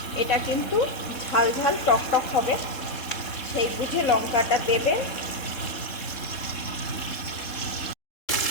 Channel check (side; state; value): right; late; 3.7 ms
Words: এটা কিন্তু ঝাল ঝাল টক টক হবে, সেই বুঝে লঙ্কাটা দেবেন।